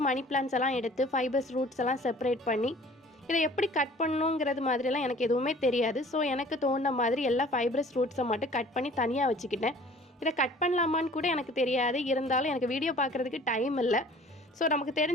மணி பிளான்ஸ் எல்லாம் எடுத்து ஃபைபர்ஸ் ரூட்ஸ் எல்லாம் செப்பரேட் பண்ணி இதை எப்படி கட் பண்ணணுங்கிறது மாதிரிலாம் எனக்கு எதுவுமே தெரியாது. ஸோ எனக்கு தோணுன மாதிரி எல்லா ஃபைபரஸ் ரூட்ஸை மட்டும் கட் பண்ணி தனியாக வச்சுக்கிட்டேன். இதை கட் பண்ணலாமான்னு கூட எனக்கு தெரியாது. இருந்தாலும் எனக்கு வீடியோ பார்க்குறதுக்கு டைம் இல்லை. ஸோ நமக்கு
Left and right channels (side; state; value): both; normal; correlation 0.50